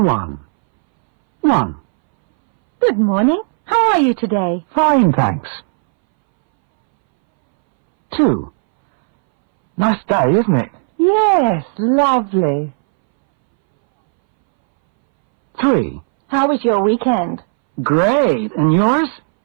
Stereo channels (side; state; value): left; silent; 65 dB below the other